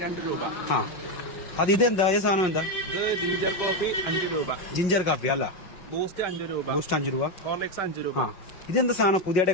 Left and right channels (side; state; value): right; late; 5.5 ms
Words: 2 രൂപ. ആ അത് ഇതെന്താ ഈ സാധനം എന്താ? ഇത് ജിഞ്ചർ കോഫി 5 രൂപ. ജിഞ്ചർ കാപ്പി അല്ല. ബൂസ്റ്റ് 5 രൂപ. ബൂസ്റ്റ് 5 രൂപ. ഹോർലിക്സ് 5 രൂപ. ആ ഇതെന്താ സാധനം പുതിയതായിട്ട്